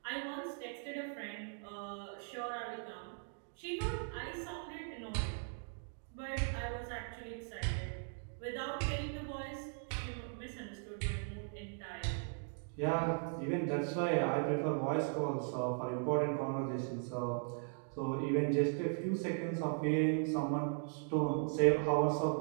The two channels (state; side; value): silent; left; 52 dB below the other